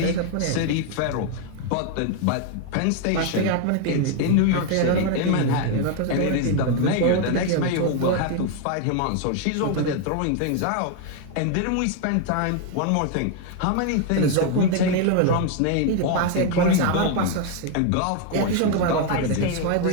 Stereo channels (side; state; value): both; different; correlation 0.01